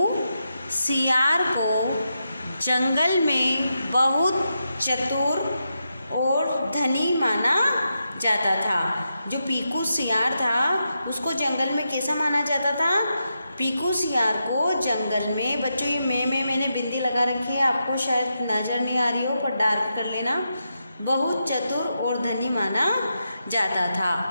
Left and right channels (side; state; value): both; inverted; correlation -0.86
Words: सियार को जंगल में बहुत चतुर और धनी माना जाता था। जो पीकू सियार था उसको जंगल में कैसा माना जाता था। पीकू सियार को जंगल में, बच्चों ये मैंने बिंदी लगा रखी है, आपको शायद नज़र नहीं आ रही हो पर डार्क कर लेना। बहुत चतुर और धनी माना जाता था।